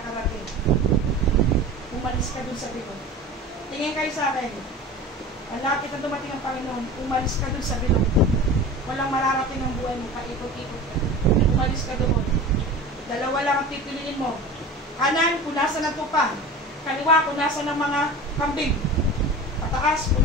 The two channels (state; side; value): normal; both; correlation 0.35